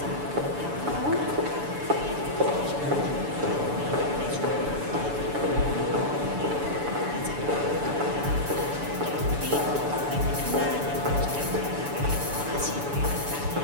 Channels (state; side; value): late; left; 6.9 ms